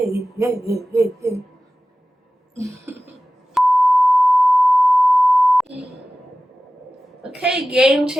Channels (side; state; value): both; normal; correlation 0.95